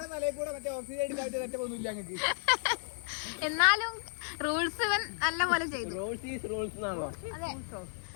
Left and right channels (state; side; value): silent; right; 56 dB below the other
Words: എന്നാലും റൂൾസ് ഇവൻ നല്ല പോലെ ചെയ്തു.